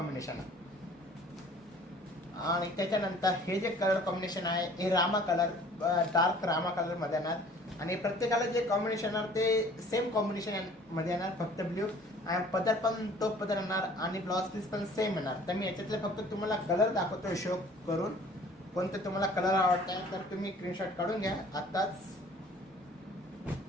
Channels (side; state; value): both; normal; correlation 0.51